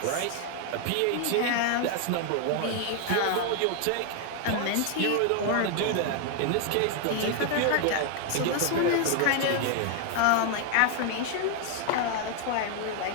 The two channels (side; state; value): both; different; correlation 0.00